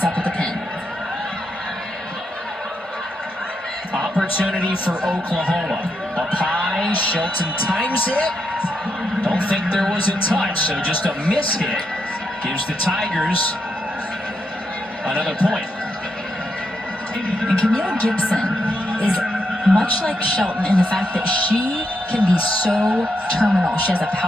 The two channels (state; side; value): normal; both; correlation 0.81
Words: up at the pin. Opportunity for Oklahoma. Up high, Shelton times it. Don't think there was a touch, so just a miss hit gives the Tigers another point. And Camille Gibson is much like Shelton in the fact that she can be so terminal. She has a